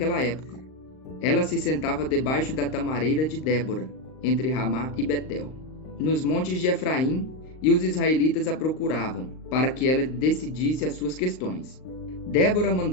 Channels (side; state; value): right; late; 38 ms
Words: época. Ela se sentava debaixo da tamareira de Débora, entre Ramá e Betel, nos montes de Efraim, e os israelitas a procuravam, para que ela decidisse as suas questões. Débora